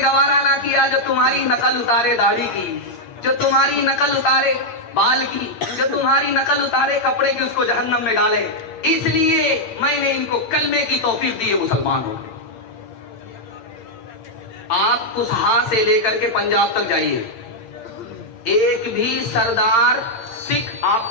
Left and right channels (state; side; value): late; right; 8.8 ms